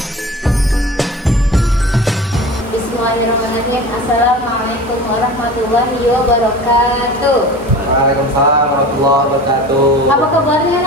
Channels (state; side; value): normal; both; correlation 0.36